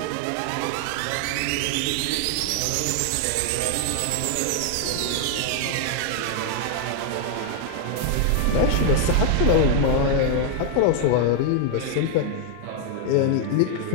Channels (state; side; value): different; both; correlation 0.00